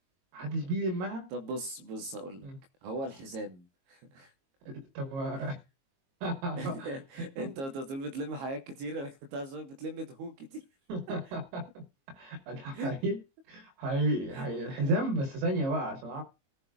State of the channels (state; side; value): late; left; 22 ms